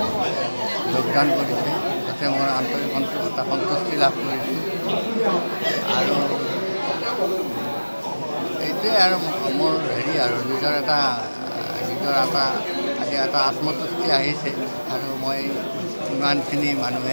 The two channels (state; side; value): inverted; both; correlation -1.00